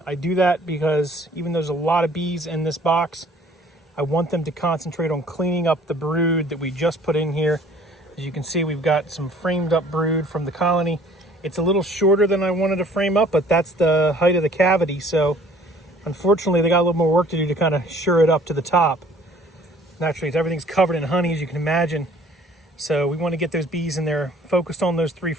I do that because even though there's a lot of bees in this box, I want them to concentrate on cleaning up the brood that we just put in here. As you can see, we've got some framed up brood from the colony. It's a little shorter than I wanted to frame up, but that's the height of the cavity. So unfortunately, they got a little more work to do to kind of sure it up to the top. Naturally, everything's covered in honey, as you can imagine. So we want to get those bees in there, focused on those 3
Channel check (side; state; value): both; normal; correlation 0.54